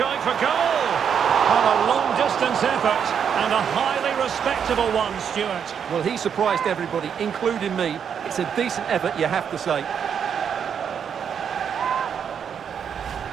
for goal. A long-distance effort, and a highly respectable one, Stuart. Well, he surprised everybody, including me. It's a decent effort, you have to say.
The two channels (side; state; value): left; quieter; 7.7 dB